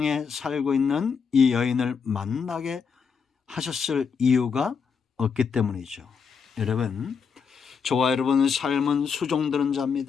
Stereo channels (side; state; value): right; quieter; 6.1 dB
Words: 살고 있는 이 여인을 만나게 하셨을 이유가 없기 때문이죠. 여러분, 저와 여러분의 삶은 수종드는